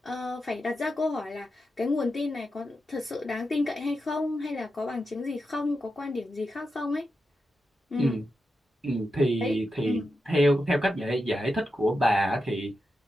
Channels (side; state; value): both; normal; correlation 0.88